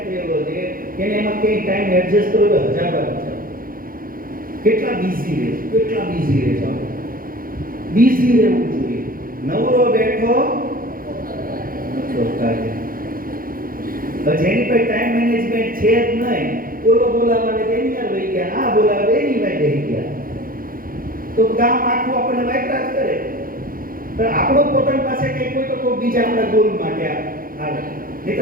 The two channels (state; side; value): late; left; 0.41 ms